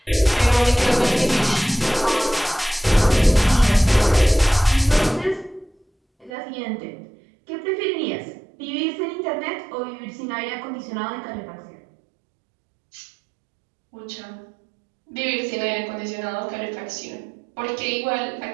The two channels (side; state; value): left; drops out; at 6.3 s